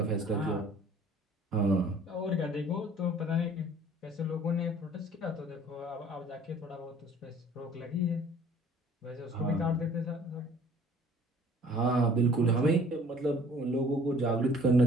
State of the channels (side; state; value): both; normal; correlation 0.53